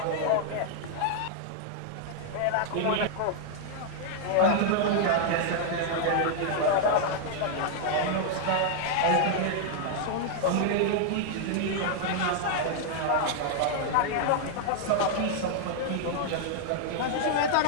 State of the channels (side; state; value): both; different; correlation -0.01